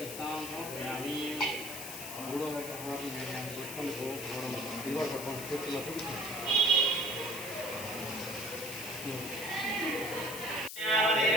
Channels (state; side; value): noise; left; hiss, 8 dB below the sound